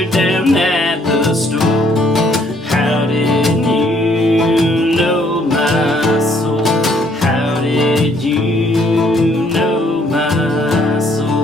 down at the store. How did you know my soul? How did you know my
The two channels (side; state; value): both; normal; correlation 0.65